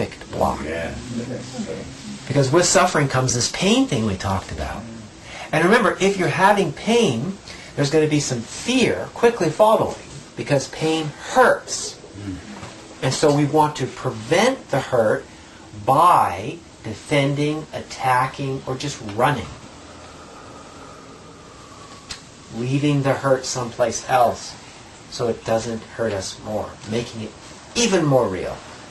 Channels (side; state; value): both; identical; correlation 1.00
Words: block. Yeah. Because with suffering comes this pain thing we talked about. And remember, if you're having pain, there's going to be some fear quickly following, because pain hurts. And so we want to prevent the hurt by defending, attacking, or just running. Leaving the hurt someplace else so it doesn't hurt us more, making it even more real